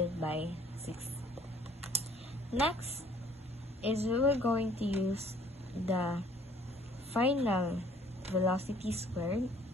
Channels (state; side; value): normal; both; correlation 0.58